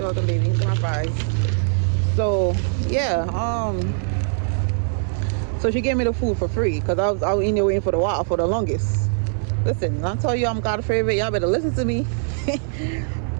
welcome, baby. These are my fries. So yeah, so she gave me the food for free because I was in there waiting for the longest. Listen, I'll tell you I'm God's favorite. Y'all better listen to me.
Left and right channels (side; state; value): left; silent; 64 dB below the other